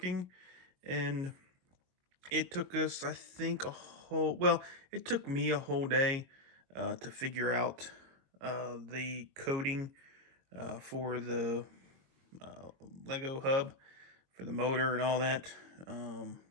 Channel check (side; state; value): left; late; 22 ms